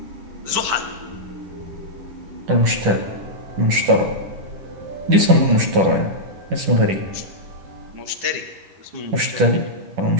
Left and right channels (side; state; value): left; late; 10 ms